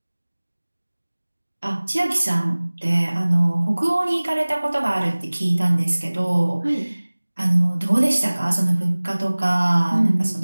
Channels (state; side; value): inverted; both; correlation -1.00